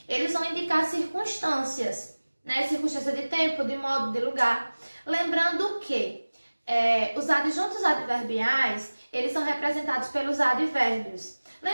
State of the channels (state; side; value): inverted; both; correlation -1.00